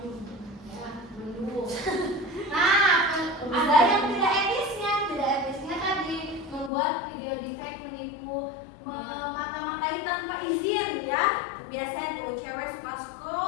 Mendung. Nah ada yang tidak etisnya tadi membuat video deepfake menipu, memata-matai tanpa izin ya. Biasanya tuh cewek suka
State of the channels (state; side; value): drops out; right; at 6.7 s